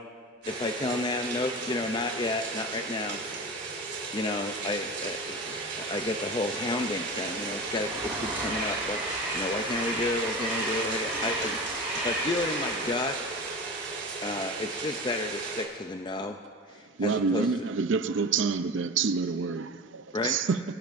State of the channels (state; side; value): normal; both; correlation 0.31